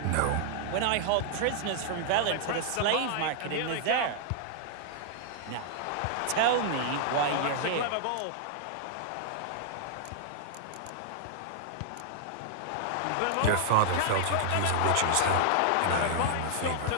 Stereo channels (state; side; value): different; both; correlation -0.01